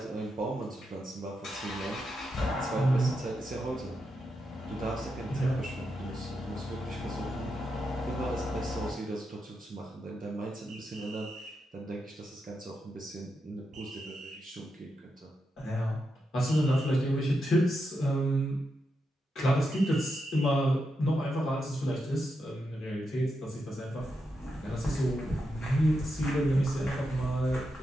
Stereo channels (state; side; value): normal; both; correlation 0.85